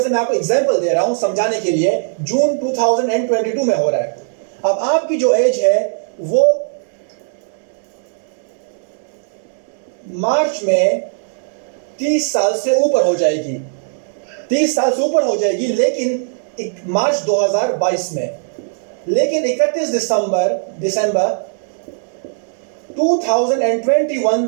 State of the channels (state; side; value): silent; left; digital silence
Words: मैं आपको एग्जाम्पल दे रहा हूं समझाने के लिए। जून 2022 में हो रहा है। अब आपकी जो एज है वो मार्च में 30 साल से ऊपर हो जाएगी, 30 साल से ऊपर हो जाएगी, लेकिन मार्च 2022 में। लेकिन 31 दिसंबर 2021